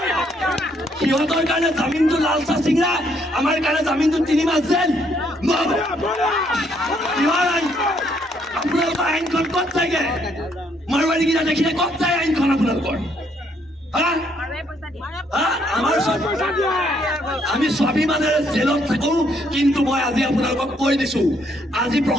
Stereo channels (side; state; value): both; normal; correlation 0.70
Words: সিহঁতৰ কাৰণে জামিনটো লাল চাহ চিংৰা, আমাৰ কাৰণে জামিনটো 3 মাহ জেল। আপোনালোকৰ আইনখন ক'ত যায়গে? মাৰোৱাৰী কেইটা দেখিলে ক'ত যায় আইনখন আপোনালোকৰ? আমি স্বাভিমানেৰে জেলত থাকো, কিন্তু মই আজি আপোনালোকক কৈ দিছো, আজি